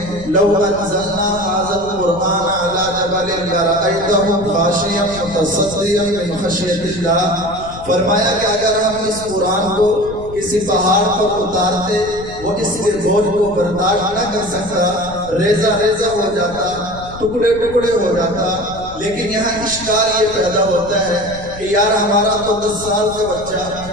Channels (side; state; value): left; noise; rumble, 15 dB below the sound